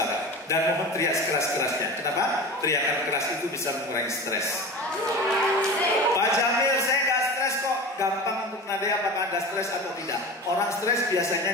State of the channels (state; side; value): normal; both; correlation 0.31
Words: Dan mohon teriak sekeras-kerasnya. Kenapa? Teriakan keras itu bisa mengurangi stres. Pak Jamil, saya nggak stres kok. Gampang untuk menandai apakah Anda stres atau tidak. Orang stres biasanya